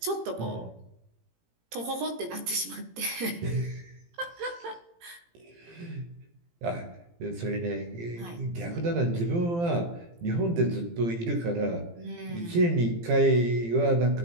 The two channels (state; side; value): late; left; 18 ms